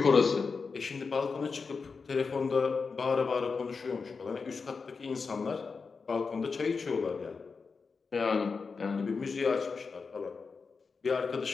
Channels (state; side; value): quieter; right; 4.9 dB